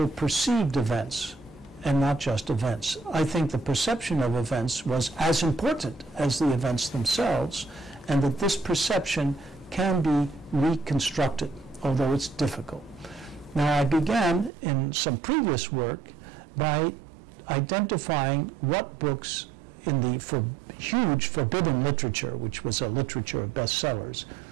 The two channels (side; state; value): left; drops out; at 14.5 s